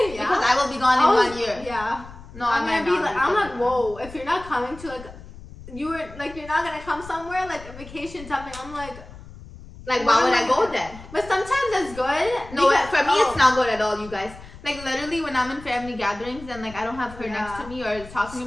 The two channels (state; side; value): noise; left; rumble, 17 dB below the sound